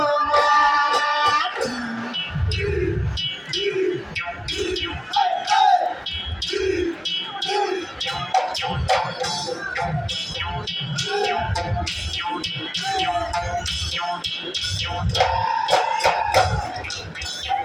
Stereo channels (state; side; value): identical; both; correlation 1.00